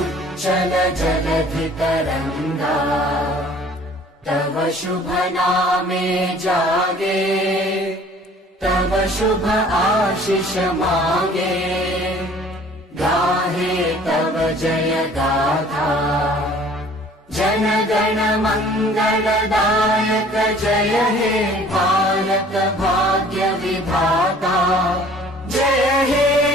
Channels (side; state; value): both; normal; correlation 0.52